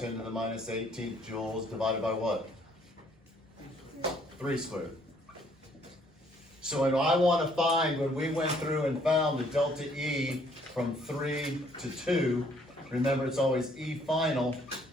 to the minus 18th joules divided by what? 3 squared. So when I want to find, when we went through and found the delta E from 3 to 2, remember it's always E final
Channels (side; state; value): both; normal; correlation 0.64